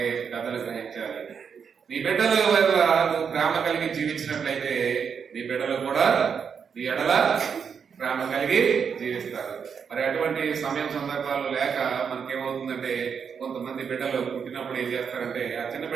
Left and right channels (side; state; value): left; quieter; 6.7 dB